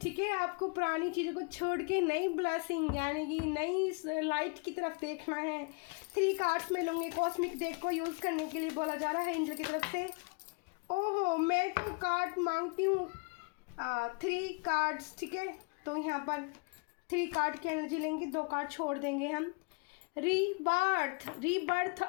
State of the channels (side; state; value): right; quieter; 34.0 dB